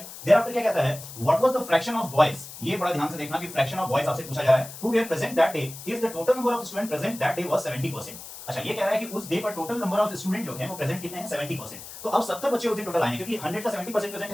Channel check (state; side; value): noise; left; hiss, 13 dB below the sound